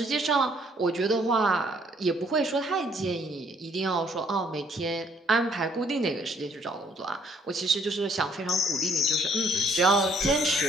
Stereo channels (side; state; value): both; normal; correlation 0.65